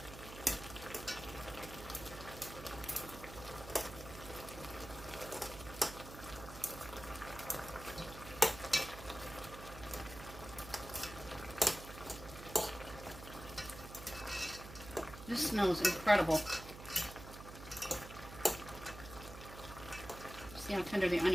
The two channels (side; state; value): right; noise; hum, 13 dB below the sound